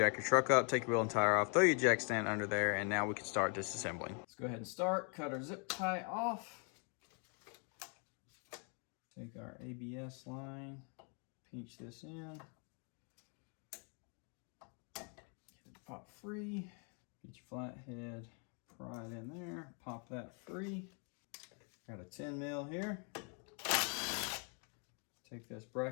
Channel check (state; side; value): quieter; right; 38.3 dB